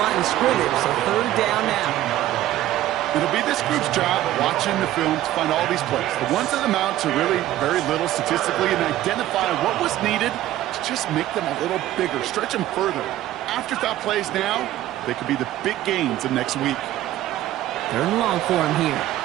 line of scrimmage. So third down now. It'll be this group's job watching the film to find all these plays. The ones that amount to really very little statistically and identify what was needed to just make them a little bigger, stretch them further. Afterthought plays now, they could be the big gains of next week. Third and long for him here.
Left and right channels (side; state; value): left; quieter; 14.0 dB